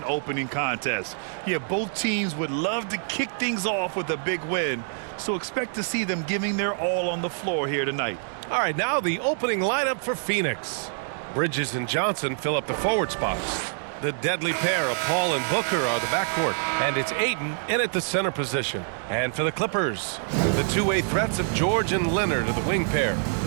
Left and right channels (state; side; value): silent; left; digital silence